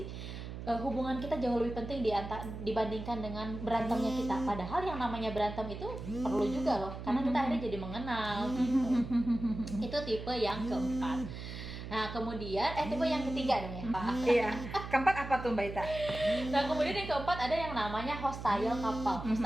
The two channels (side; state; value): right; noise; hum, 9 dB below the sound